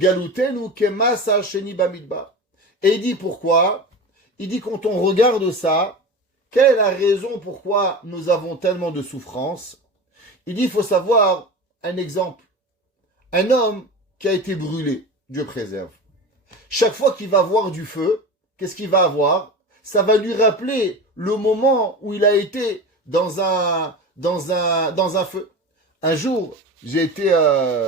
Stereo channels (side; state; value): both; normal; correlation 0.30